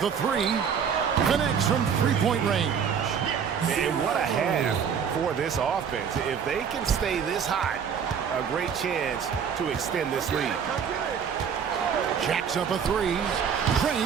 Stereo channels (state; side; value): quieter; left; 7.3 dB